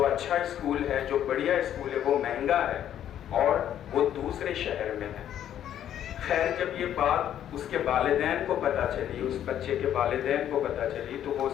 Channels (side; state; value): right; quieter; 10.6 dB